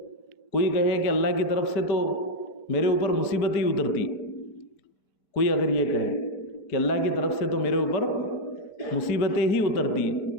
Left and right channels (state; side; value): late; right; 5.1 ms